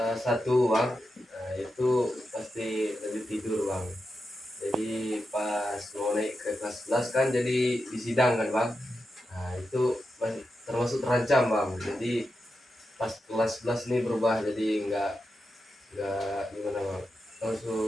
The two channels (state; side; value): normal; both; correlation 0.88